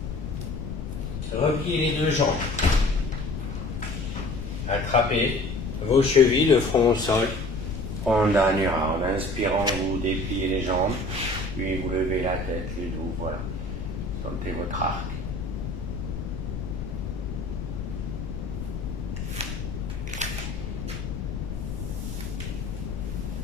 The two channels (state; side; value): noise; left; rumble, 5 dB below the sound